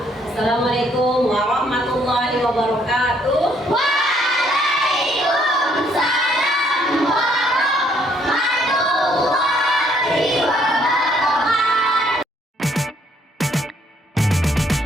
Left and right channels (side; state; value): both; normal; correlation 0.67